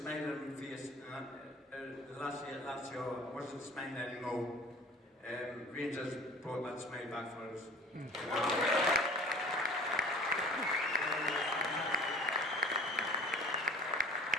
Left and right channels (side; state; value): both; normal; correlation 0.45